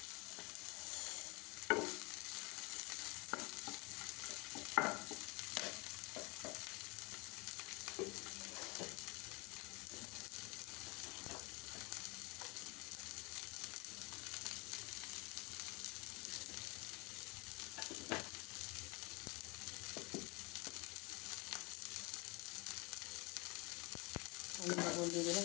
আমি লবণ দিয়ে দিলাম,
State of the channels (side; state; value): right; quieter; 27.5 dB